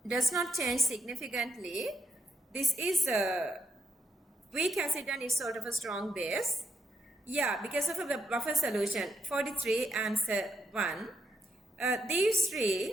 does not change significantly. This is a weak acid and it's sort of a strong base. Because of a buffer solution. 43, answer 1. These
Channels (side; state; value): both; normal; correlation 0.81